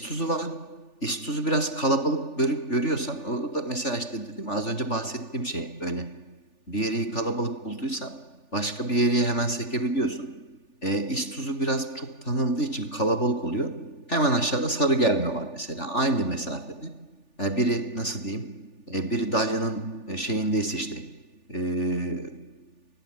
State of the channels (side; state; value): right; late; 3.4 ms